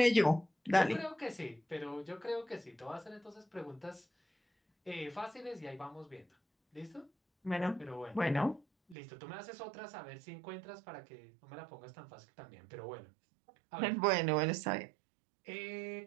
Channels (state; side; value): drops out; left; at 9.0 s